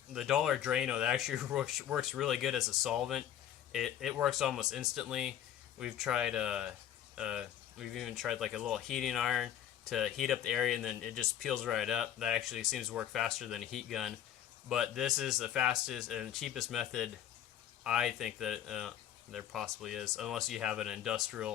Dollar Drano that actually works really good as a solvent. It works almost instantly. We've tried We've even tried like a little heating iron to heat up the area, and then it just peels right up. That actually seems to work faster than a heat gun. But this is the fastest and cheapest method I think that there possibly is, unless you have an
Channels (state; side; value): quieter; right; 10.6 dB